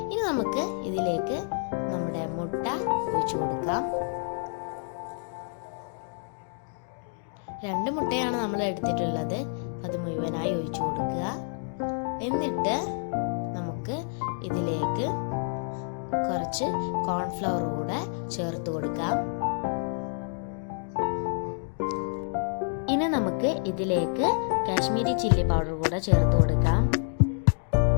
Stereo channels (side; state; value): right; silent; 56 dB below the other